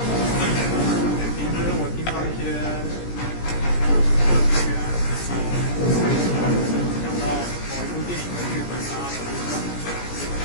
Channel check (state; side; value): late; right; 17 ms